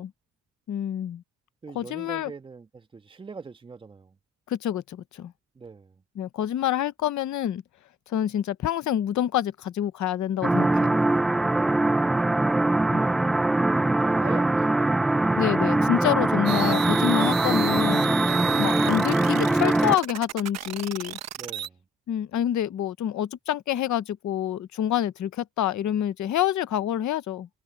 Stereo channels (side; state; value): both; normal; correlation 0.67